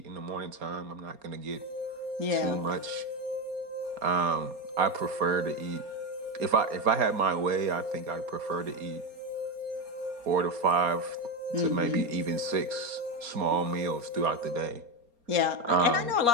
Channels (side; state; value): left; late; 4.3 ms